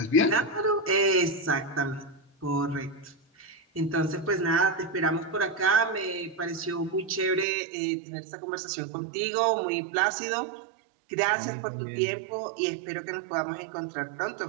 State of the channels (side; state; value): left; drops out; at 7.5 s